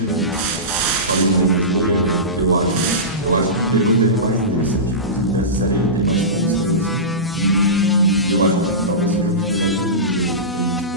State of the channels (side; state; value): both; normal; correlation -0.20